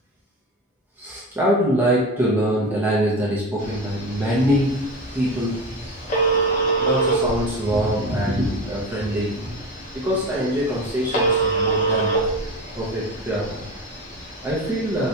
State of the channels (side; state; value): both; normal; correlation 0.27